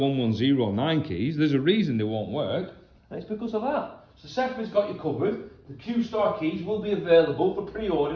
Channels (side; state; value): both; identical; correlation 1.00